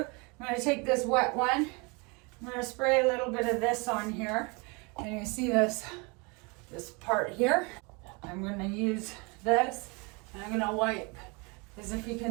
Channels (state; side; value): quieter; left; 29.7 dB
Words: I'm going to take this wet one, I'm going to spray a little bit of this on here, and you see this part here. I'm going to use this, and I'm going to wipe, because if you